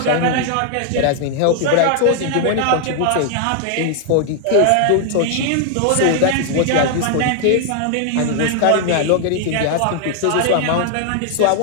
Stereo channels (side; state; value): both; different; correlation 0.00